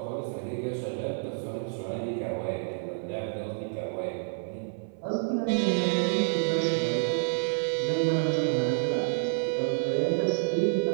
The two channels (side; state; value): left; silent; 59 dB below the other